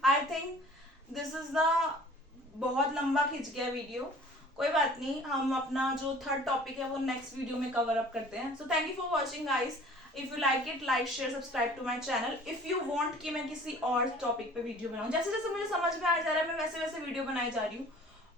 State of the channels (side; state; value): both; normal; correlation 0.49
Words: I think this is the, बहुत लंबा खिंच गया वीडियो, कोई बात नहीं, हम अपना जो थर्ड टॉपिक है वो नेक्स्ट वीडियो में कवर अप करते हैं। So thank you for watching guys. If you like it, like share subscribe to my channel. If you want कि मैं किसी और टॉपिक पे वीडियो बनाऊं, जैसे जैसे मुझे समझ में आ जा रहा है मैं वैसे वैसे वीडियो बनाई जा रही हूँ।